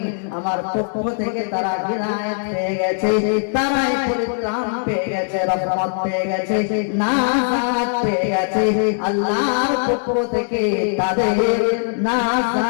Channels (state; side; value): silent; right; digital silence